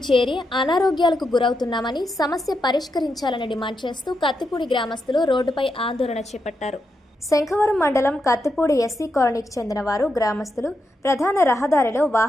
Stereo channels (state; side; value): normal; both; correlation 0.84